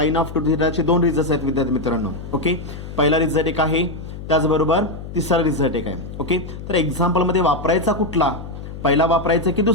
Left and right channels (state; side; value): noise; left; hum, 11 dB below the sound